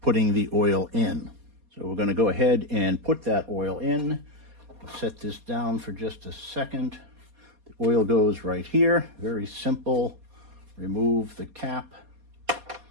putting the oil in. So we're going to go ahead and put that oil in. I'll set this down for just a second. The oil goes right here. Very simple. Remove the cap.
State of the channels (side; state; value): left; late; 4.2 ms